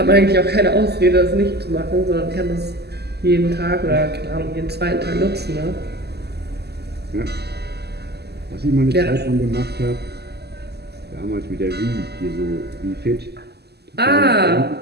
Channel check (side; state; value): left; late; 0.47 ms